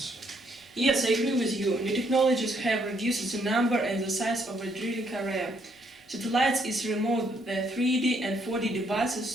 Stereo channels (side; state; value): both; normal; correlation 0.71